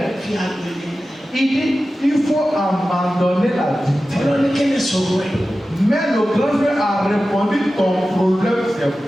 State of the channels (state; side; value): normal; both; correlation 0.94